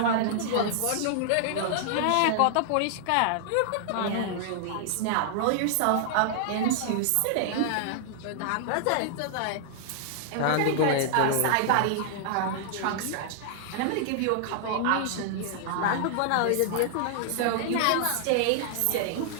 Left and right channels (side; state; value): both; different; correlation -0.01